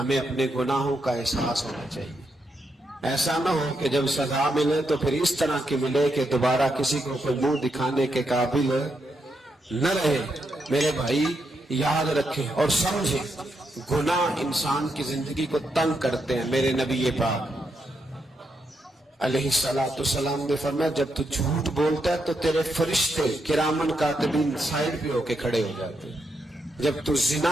اپنے گناہوں کا احساس ہونا چاہیے۔ ایسا نہ ہو کہ جب سزا ملے تو پھر اس طرح کی ملے کہ دوبارہ کسی کو کوئی منہ دکھانے کے قابل نہ رہے۔ میرے بھائی یاد رکھیں اور سمجھیں، گناہ انسان کی زندگی کو تنگ کرتے ہیں۔ میرے نبی پاک علیہ السلام نے فرمایا جب تو جھوٹ بولتا ہے تو تیرے فرشتے کرامن کاتبین سائڈ پہ ہو کے کھڑے ہو جاتے ہیں، جب تو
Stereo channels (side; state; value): both; normal; correlation 0.81